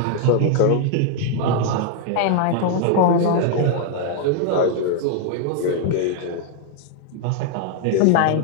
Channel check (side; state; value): both; different; correlation 0.00